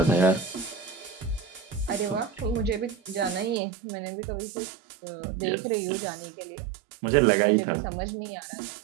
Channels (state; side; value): drops out; left; at 3.6 s